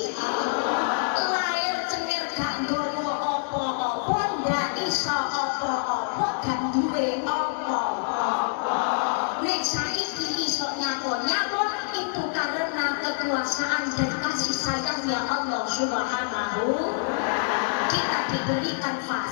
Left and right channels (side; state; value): right; silent; digital silence